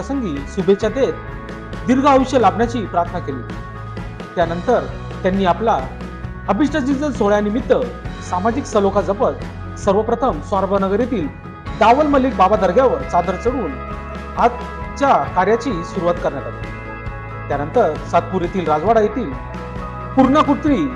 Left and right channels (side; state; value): both; identical; correlation 1.00